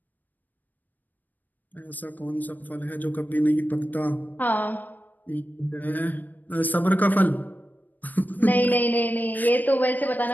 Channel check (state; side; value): late; right; 0.086 ms